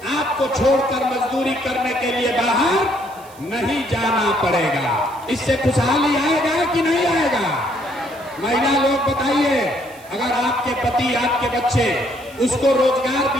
आपको छोड़कर मजदूरी करने के लिए बाहर नहीं जाना पड़ेगा। इससे खुशहाली आएगा कि नहीं आएगा? महिला लोग बताइए, अगर आपके पति, आपके बच्चे, उसको रोजगार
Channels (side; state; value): right; noise; hiss, 24 dB below the sound